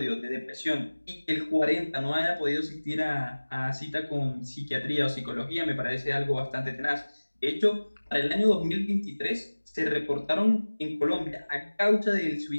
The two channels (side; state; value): both; inverted; correlation -1.00